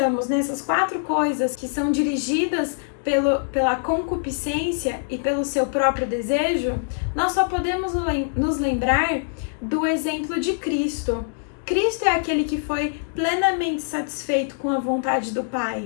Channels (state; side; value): silent; right; digital silence